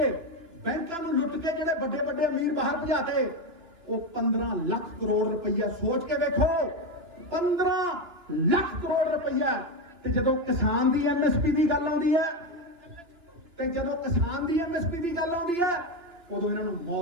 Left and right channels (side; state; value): left; late; 2.9 ms